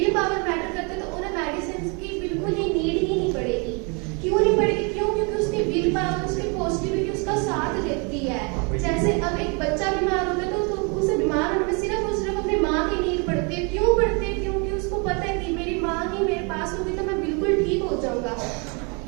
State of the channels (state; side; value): quieter; left; 33.4 dB